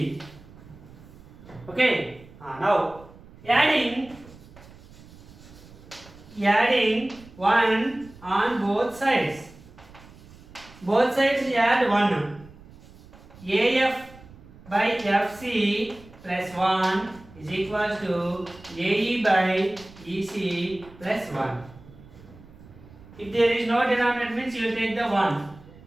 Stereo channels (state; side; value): noise; right; rumble, 21 dB below the sound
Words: Okay. Now adding 1 on both sides. Both sides add 1. AF by FC plus 1 is equal to AE by EC plus 1. If there is no denominator means you will take the 1.